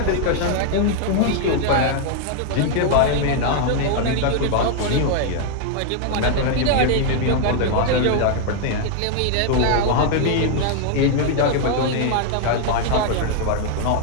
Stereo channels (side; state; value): both; different; correlation 0.00